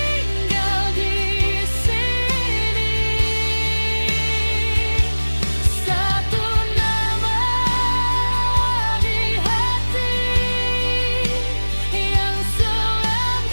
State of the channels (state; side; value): inverted; both; correlation -1.00